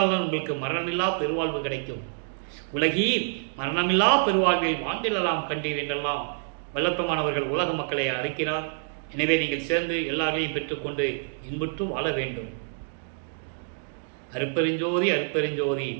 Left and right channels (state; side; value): silent; left; digital silence